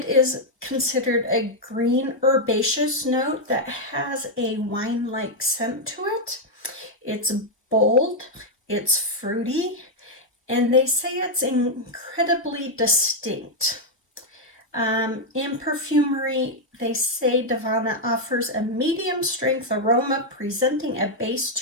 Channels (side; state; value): both; normal; correlation -0.01